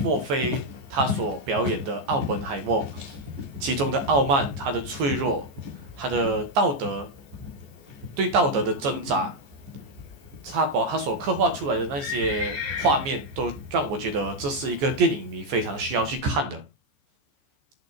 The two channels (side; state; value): left; late; 14 ms